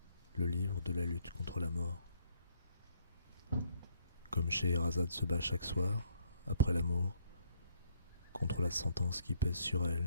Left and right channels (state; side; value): inverted; both; correlation -0.68